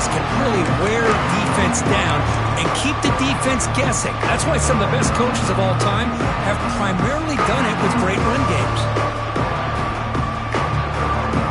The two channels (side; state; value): both; identical; correlation 1.00